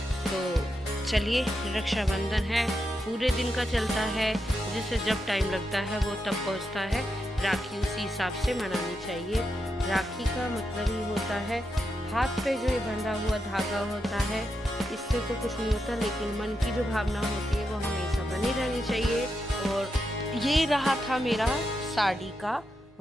तो चलिए रक्षाबंधन है, पूरे दिन का चलता है, जिसे जब टाइम लगता है वो तब पहुँचता है। राखी उसी हिसाब से मनानी चाहिए। राखी का मतलब ही होता है हाथ पे जो ये बंधा हुआ धागा होता है, इससे तो कुछ नहीं होता, लेकिन मन की जो भावना होती है वो हमेशा बनी रहनी चाहिए। और ये रहा था मेरा साड़ी का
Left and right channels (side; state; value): both; normal; correlation 0.85